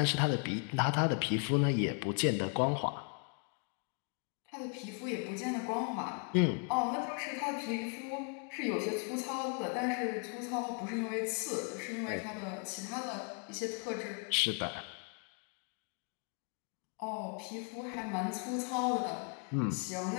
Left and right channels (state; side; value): quieter; right; 37.7 dB